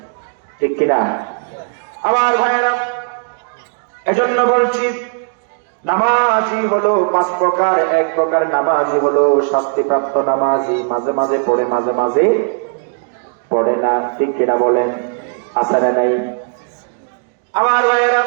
ঠিক কিনা আমার ভাইরা? এজন্য বলছি, নামাজি হলো 5 প্রকার। এক প্রকার নামাজি হলো শাস্তিপ্রাপ্ত নামাজি, মাঝে মাঝে পড়ে, মাঝে মাঝে পড়ে না, ঠিক কিনা বলেন? আছে না নাই আমার ভাইয়েরা?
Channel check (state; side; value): silent; left; digital silence